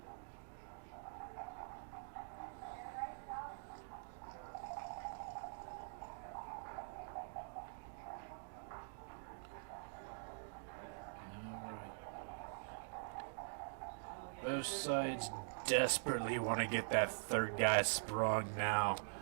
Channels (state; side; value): silent; left; digital silence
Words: Both sides desperately want to get that third guy sprung now.